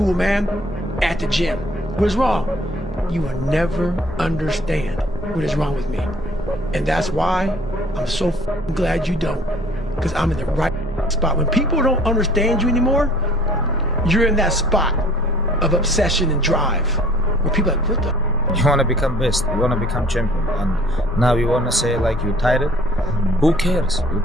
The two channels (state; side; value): normal; both; correlation 0.54